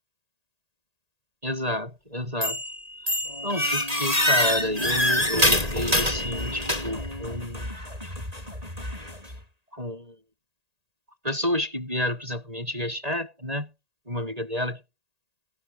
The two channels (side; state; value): left; late; 1.8 ms